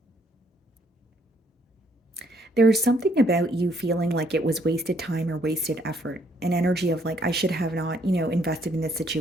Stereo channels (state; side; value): normal; both; correlation 0.68